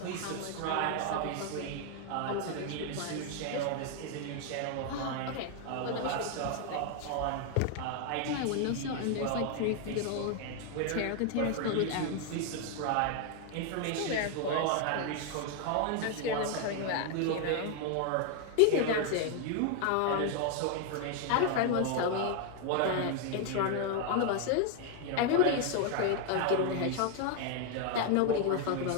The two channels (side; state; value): both; different; correlation 0.01